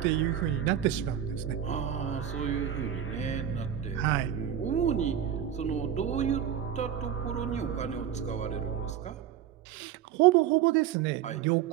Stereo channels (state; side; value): quieter; left; 9.9 dB